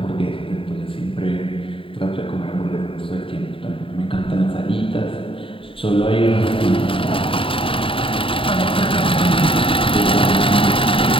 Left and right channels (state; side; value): late; right; 0.26 ms